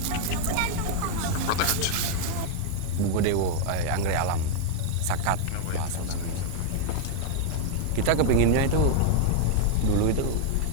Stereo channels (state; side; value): different; both; correlation 0.00